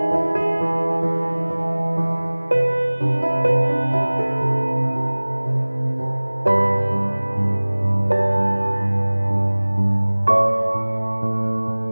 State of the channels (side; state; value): both; inverted; correlation -1.00